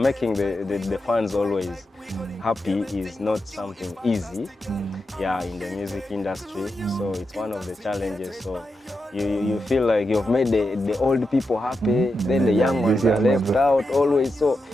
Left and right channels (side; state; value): both; normal; correlation 0.87